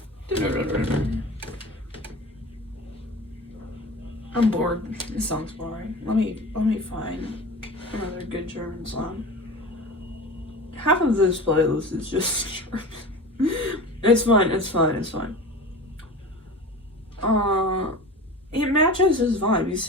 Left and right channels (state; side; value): normal; both; correlation 0.34